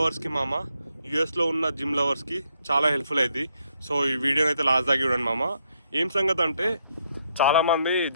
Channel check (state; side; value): inverted; both; correlation -0.75